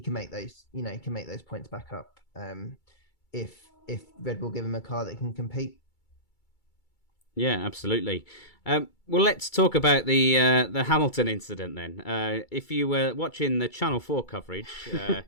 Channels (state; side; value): late; right; 2.3 ms